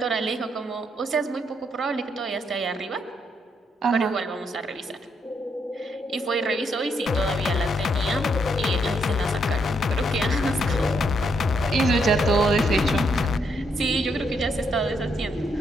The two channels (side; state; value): both; normal; correlation 0.76